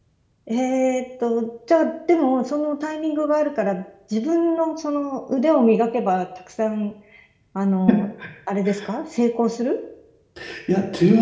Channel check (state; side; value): identical; both; correlation 1.00